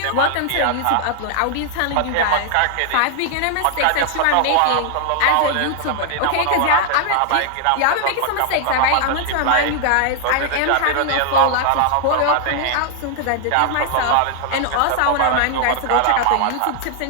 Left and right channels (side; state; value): both; different; correlation 0.00